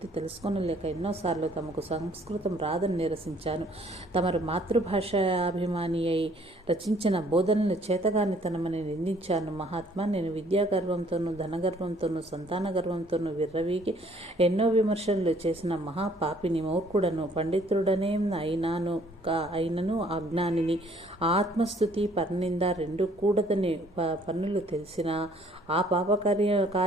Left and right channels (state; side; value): normal; both; correlation 0.61